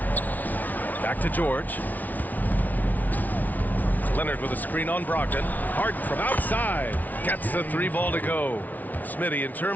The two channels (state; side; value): late; right; 0.078 ms